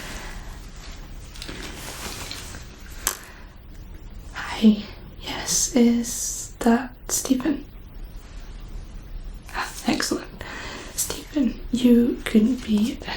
Hi. Yes, is that Stephen? Ah, excellent. Stephen, you could be a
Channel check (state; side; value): identical; both; correlation 1.00